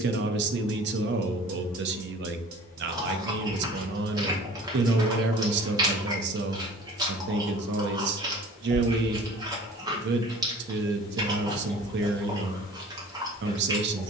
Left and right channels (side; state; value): both; normal; correlation 0.45